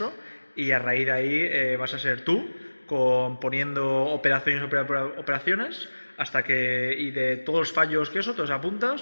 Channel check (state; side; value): inverted; both; correlation -1.00